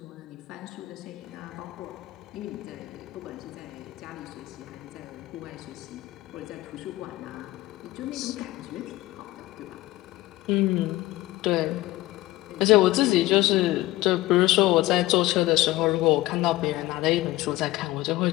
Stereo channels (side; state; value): right; quieter; 17.6 dB